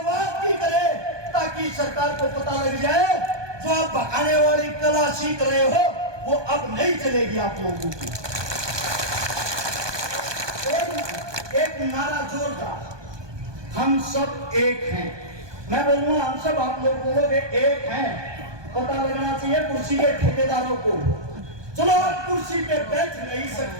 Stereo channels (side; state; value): left; late; 1.2 ms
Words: की करे, ताकि सरकार को पता लग जाए जो आप भगाने वाली कला सीख रहे हो वो अब नहीं चलेगी आप लोगों की। एक नारा जोरदार, हम सब एक हैं। मैं बोलूंगा हम सब, आप लोग बोलोगे एक हैं। पता लगना चाहिए कुर्सी के ठेकेदारों को। चलो आप कुर्सी पे बैठ नहीं